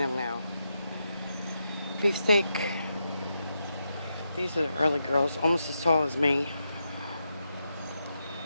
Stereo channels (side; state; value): both; inverted; correlation -0.85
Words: them now. Beefsteak. These are the early girls, almost as tall as me.